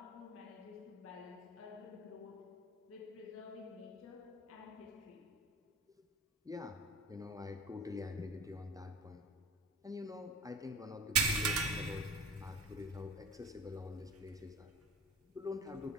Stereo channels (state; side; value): normal; both; correlation 0.35